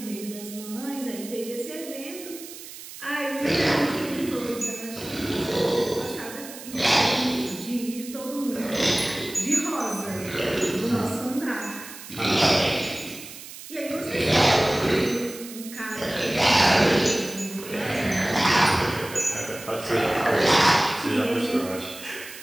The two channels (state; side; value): noise; right; hiss, 14 dB below the sound